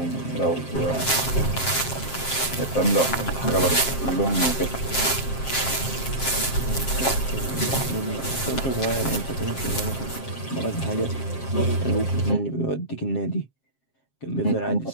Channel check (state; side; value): late; right; 7.5 ms